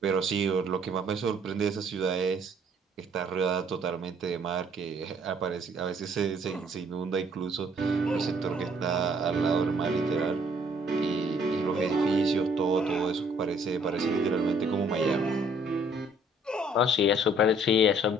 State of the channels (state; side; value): normal; both; correlation 0.61